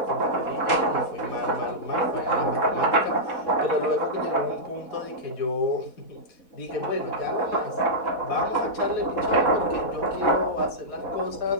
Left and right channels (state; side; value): late; right; 4.1 ms